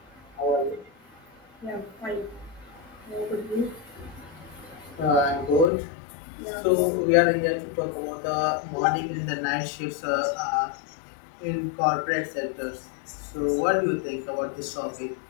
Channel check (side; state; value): right; drops out; at 5.7 s